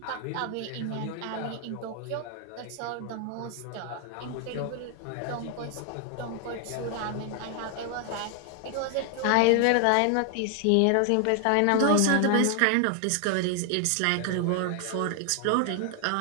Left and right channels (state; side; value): different; both; correlation 0.00